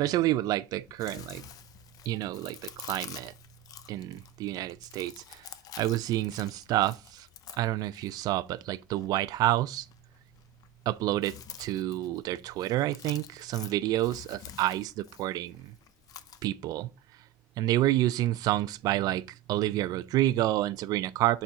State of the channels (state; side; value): quieter; left; 13.6 dB